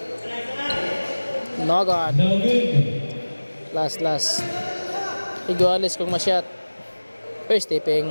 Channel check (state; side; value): inverted; both; correlation -1.00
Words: No God. No good. Last. Iguales kung ma-shot. First tipping.